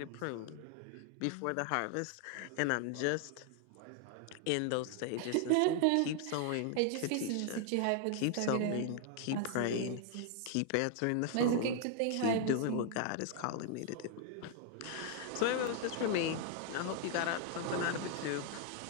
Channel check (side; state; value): both; different; correlation 0.00